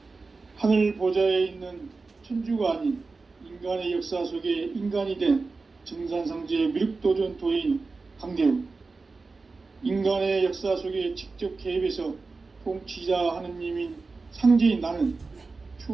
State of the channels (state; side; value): quieter; left; 4.0 dB